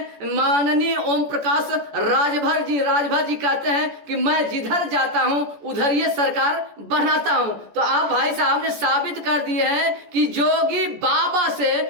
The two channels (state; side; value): late; left; 14 ms